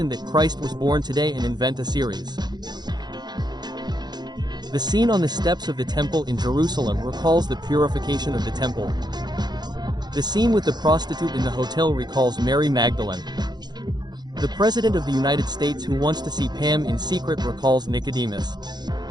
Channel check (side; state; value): left; late; 0.20 ms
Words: that Christ was born today and invent a series. The scene on the steps of the temple in Jerusalem recalls the purification of the temple. The scene with the prostitute in the hotel recalls Mary Magdalene. The President of the United States who wants to see Pam in secret recalls Nicodemus.